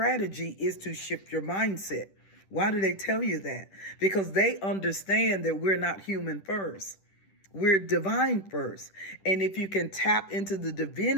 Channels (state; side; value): late; right; 10 ms